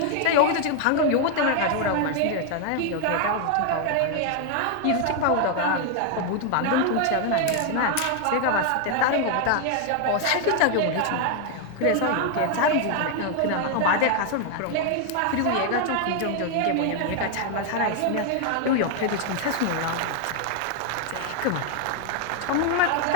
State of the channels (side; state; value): both; different; correlation 0.00